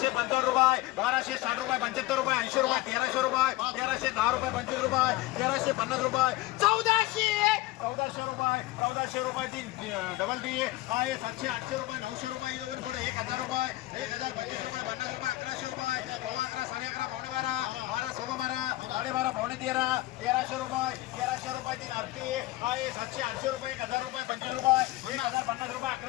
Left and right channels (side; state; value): right; quieter; 18.3 dB